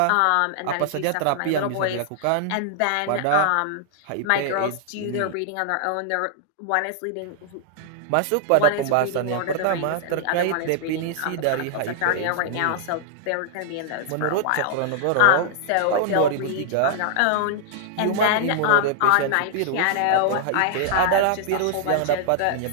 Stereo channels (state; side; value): different; both; correlation -0.01